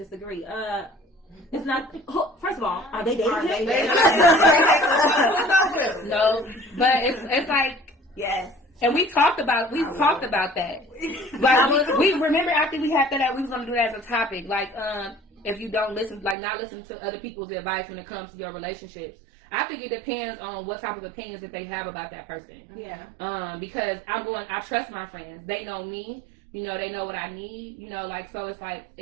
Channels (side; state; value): left; drops out; at 16.4 s